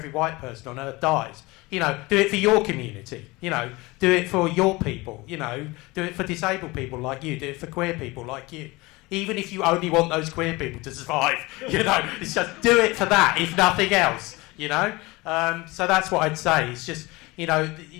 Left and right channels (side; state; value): right; quieter; 22.6 dB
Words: white person on earth dies, do it for your community. Do it for your people. Do it for disabled people like you. Do it for queer people like you. Even if you only want those queer people to survive, it's just do it for that, if nothing else. So that's what I'd say. It's just,